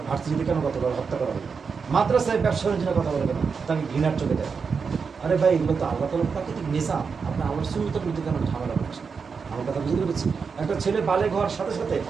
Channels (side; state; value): left; quieter; 5.5 dB